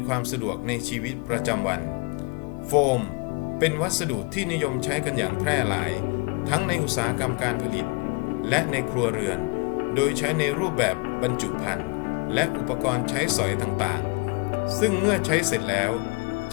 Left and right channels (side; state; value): right; quieter; 30.7 dB